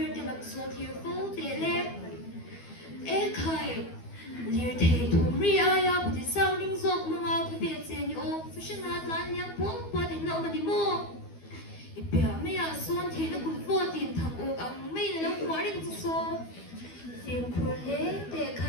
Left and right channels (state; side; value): late; right; 12 ms